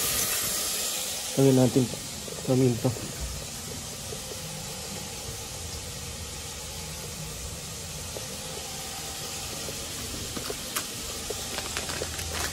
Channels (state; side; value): identical; both; correlation 1.00